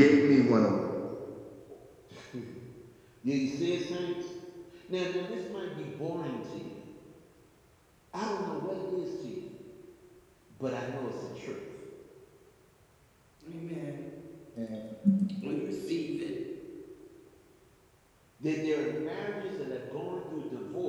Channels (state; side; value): identical; both; correlation 1.00